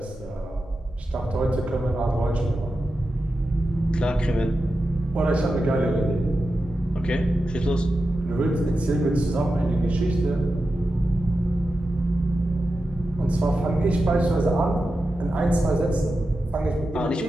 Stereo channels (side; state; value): both; normal; correlation 0.91